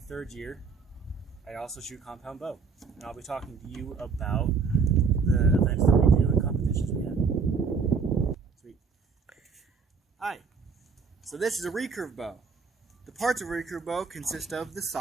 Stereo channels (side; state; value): left; quieter; 5.3 dB